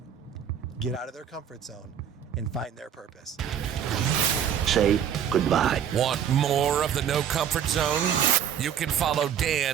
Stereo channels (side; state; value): left; quieter; 8.9 dB